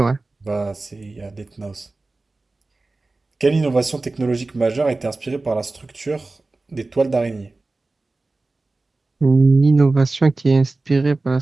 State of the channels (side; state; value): left; quieter; 3.3 dB